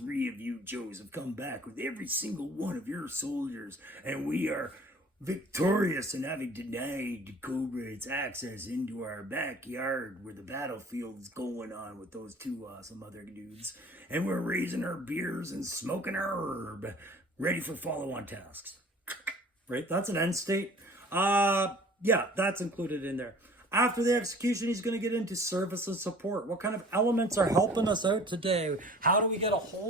of you Joes have come back with every single one of your soldiers, and we are victorious in having denied Cobra its access into our backyard where the battlefield's going on with those two awesome other dudes. And we're raising our beers and smoking our herb, ready for follow-on tasks. Right? That's an end state. Yeah, that's included in there. After the execution, he's going to get into service and support. What kind of elements are helping us out today? How do we get a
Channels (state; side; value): normal; both; correlation 0.48